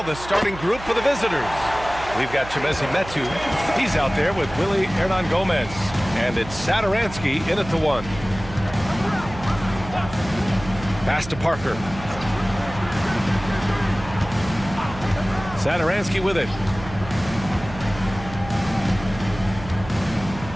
the starting group for the visitors. We've got Chimezie Metu. He's out there with Willie Hernan Gomez. And it's Satoransky in at the 1. Pass to Parker. Satoransky with it.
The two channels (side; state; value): right; noise; hum, 13 dB below the sound